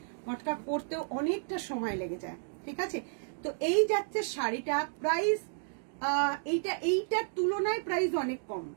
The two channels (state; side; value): silent; left; digital silence